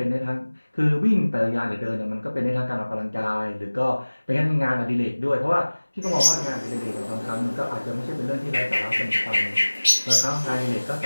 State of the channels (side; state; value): both; inverted; correlation -1.00